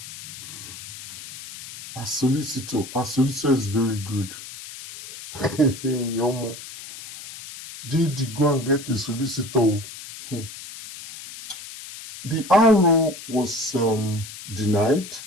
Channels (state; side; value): noise; left; hiss, 13 dB below the sound